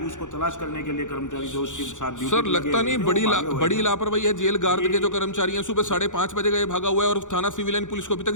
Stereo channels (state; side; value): late; right; 0.86 ms